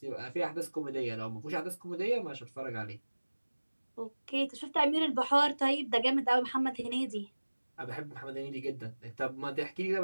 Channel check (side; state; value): both; inverted; correlation -1.00